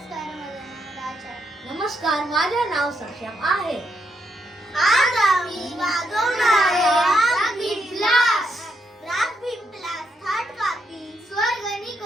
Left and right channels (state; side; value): normal; both; correlation 0.79